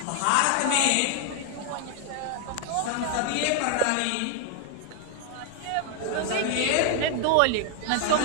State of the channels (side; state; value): both; different; correlation 0.00